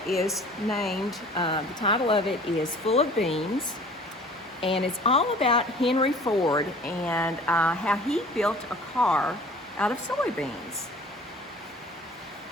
is named, the title of it is Full of Beans, and it's all about Henry Ford and how he built a car out of soybeans.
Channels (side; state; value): both; normal; correlation 0.48